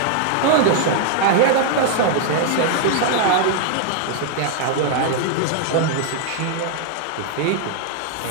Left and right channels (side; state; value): both; different; correlation 0.00